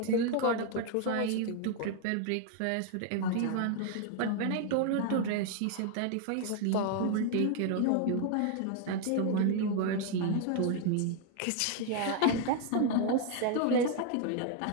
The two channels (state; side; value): different; both; correlation 0.00